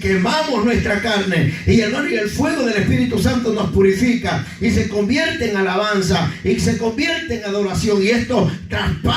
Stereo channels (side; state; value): both; identical; correlation 1.00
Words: nuestra carne, y hermano, y el fuego del Espíritu Santo nos purifica y se convierte en alabanza y se convierte en adoración, y esto